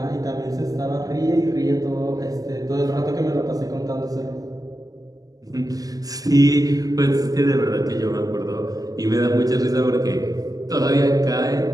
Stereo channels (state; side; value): late; left; 0.18 ms